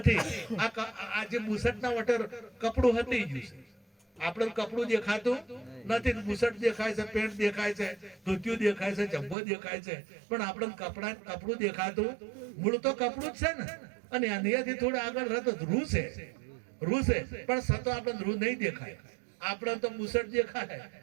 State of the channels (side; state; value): left; drops out; at 9.3 s